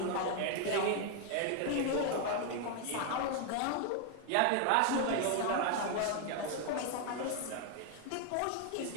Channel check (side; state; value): both; different; correlation 0.00